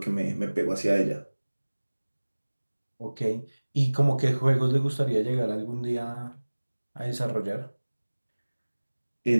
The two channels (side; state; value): both; inverted; correlation -1.00